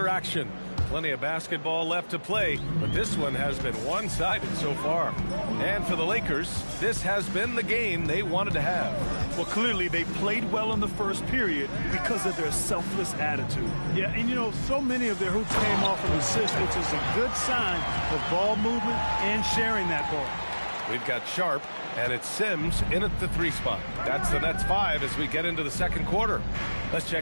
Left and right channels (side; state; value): both; inverted; correlation -1.00